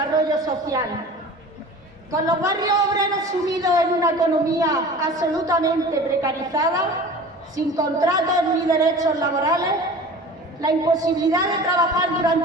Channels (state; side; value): normal; both; correlation 0.39